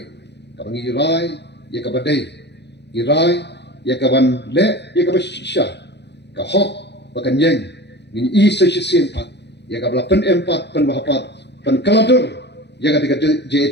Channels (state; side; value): late; right; 0.50 ms